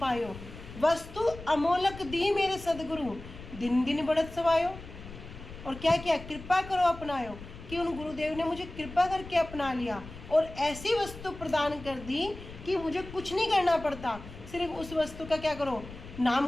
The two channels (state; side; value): noise; left; rumble, 14 dB below the sound